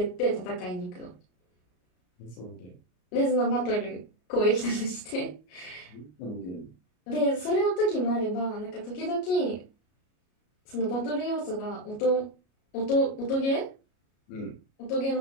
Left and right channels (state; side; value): late; right; 33 ms